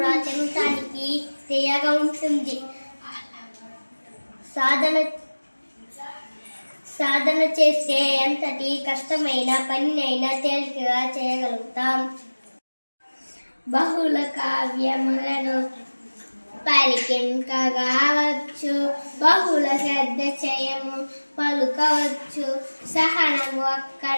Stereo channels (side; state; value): both; inverted; correlation -1.00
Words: చెందటానికి తీయగా ఉంటుంది. సాధన చేస్తే ఎంతటి కష్టమైన పనినైనా తేలికగా చేయగలుగుతాం. బహుళ కావ్యములను పలికించవచ్చు, బహుళ శ్రద్ధ చేయము పలుకవచ్చు. సహనము